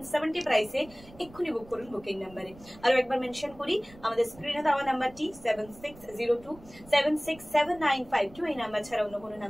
প্রাইসে। এক্ষুনি বুক করুন বুকিং নাম্বারে। আরো একবার মেনশন করি, আমাদের স্ক্রিনে দেওয়া নাম্বারটি 7602767952। এই নাম্বার ছাড়া অন্য কোনো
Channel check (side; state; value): right; noise; rumble, 22 dB below the sound